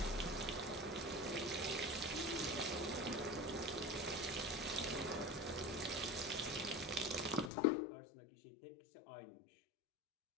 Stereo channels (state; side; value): drops out; right; at 7.5 s